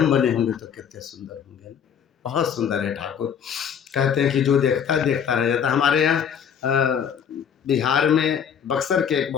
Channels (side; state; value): right; quieter; 7.9 dB